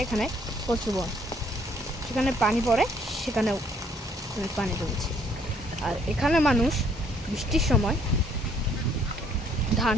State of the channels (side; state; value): both; normal; correlation 0.65